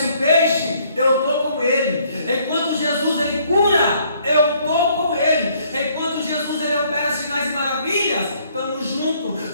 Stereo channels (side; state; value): both; inverted; correlation -0.64